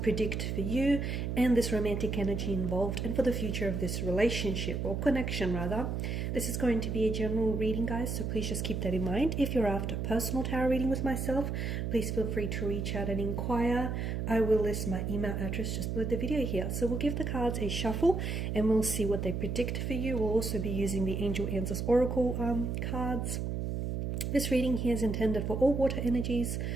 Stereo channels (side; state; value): right; noise; hum, 2 dB below the sound